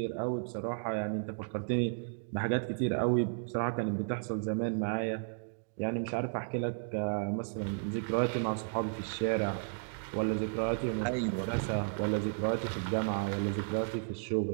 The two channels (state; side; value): silent; left; digital silence